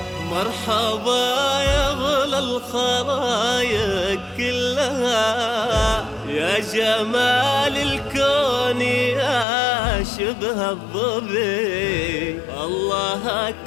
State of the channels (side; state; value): right; drops out; at 9.5 s